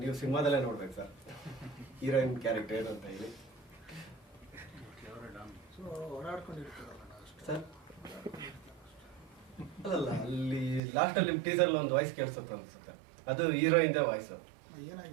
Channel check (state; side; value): drops out; left; at 10.8 s